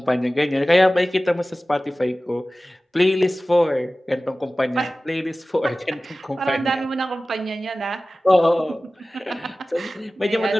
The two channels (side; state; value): both; normal; correlation 0.97